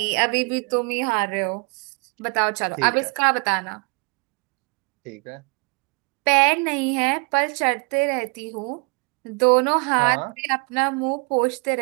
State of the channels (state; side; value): quieter; left; 32.3 dB